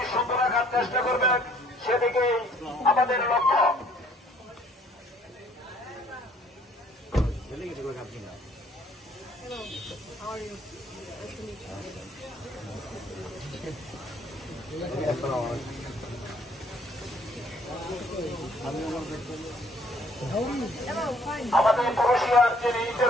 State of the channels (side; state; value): both; normal; correlation 0.61